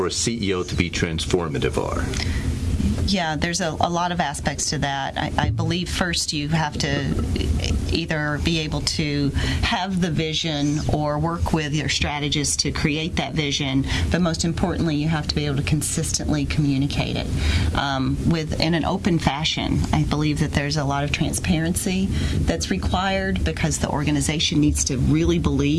a CEO to be transformative are? Yeah, there's a lot of aspects to that. I believe first you have to either be able to have the vision or work with your strategists to create that vision, but most importantly, you have to be able to consistently communicate it in an open fashion. I believe that there's a lot of transparency that's required because the organization needs to really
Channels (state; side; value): identical; both; correlation 1.00